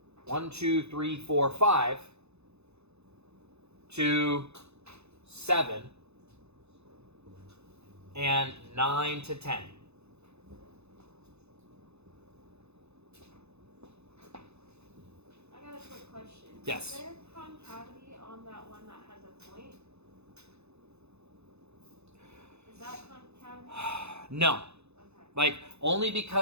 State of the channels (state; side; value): late; left; 0.80 ms